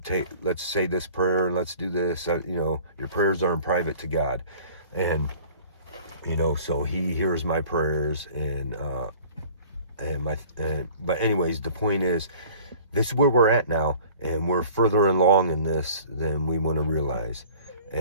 say this prayer and let's do this. Your prayers are in private to God, and so He hears my prayers. But anyways, the point is, this is where we're at now, and we're further along in this than we want to realize.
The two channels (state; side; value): inverted; both; correlation -0.48